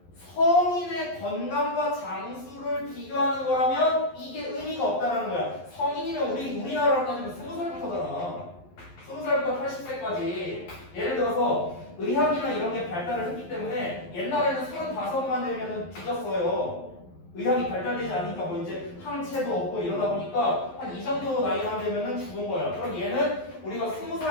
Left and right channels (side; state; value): right; late; 11 ms